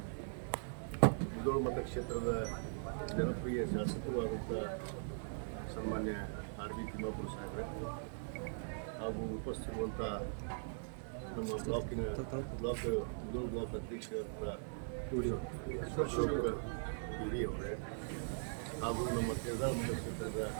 ಮುಧೋಳ ಮತಕ್ಷೇತ್ರದ ಜನಪ್ರಿಯ ಶಾಸಕರು ಆದಂಥ ಸನ್ಮಾನ್ಯ ಆರ್ ಬಿ ತಿಮ್ಮಾಪುರ ಸಾಹೇಬ್ರೆ ಹಾಗೂ ಉಪಸ್ಥಿತಿರುವಂಥ ನಮ್ಮ ಮುಧೋಳ ಬ್ಲಾಕ್ ಅಧ್ಯಕ್ಷರಾದ ಅಶೋಕ್ ಹಿರಿಯವರೇ ಹಾಗೂ ನಮ್ಮ ಕೇದಾರ ಮತಕ್ಷೇತ್ರದ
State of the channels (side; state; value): left; silent; digital silence